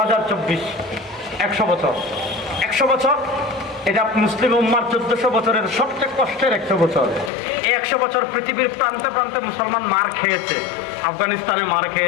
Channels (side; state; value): right; drops out; at 7.3 s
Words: 100 বছর। 100 বছর এটা মুসলিম উম্মার 1400 বছরের সবচেয়ে কষ্টের 100 বছর। এই 100 বছর পৃথিবীর প্রান্তে প্রান্তে মুসলমান মার খেয়েছে। আফগানিস্তানে মার